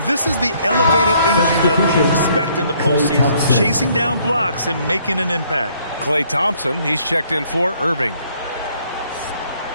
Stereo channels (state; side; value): inverted; both; correlation -0.65